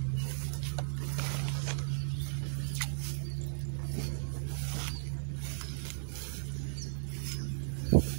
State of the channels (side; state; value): left; silent; digital silence